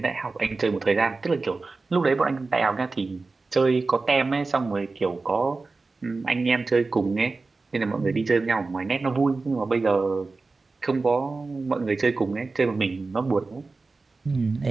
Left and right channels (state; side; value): quieter; left; 3.8 dB